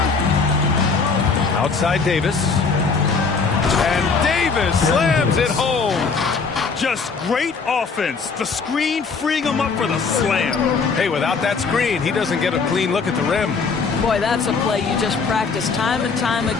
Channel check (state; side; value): quieter; right; 4.9 dB